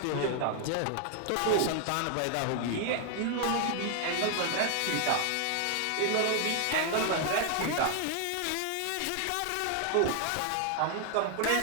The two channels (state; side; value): different; both; correlation 0.00